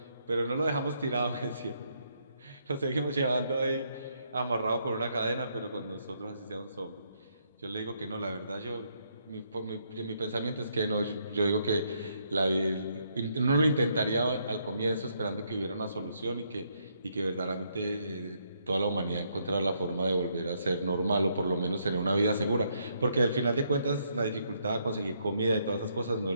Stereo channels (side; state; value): both; inverted; correlation -0.74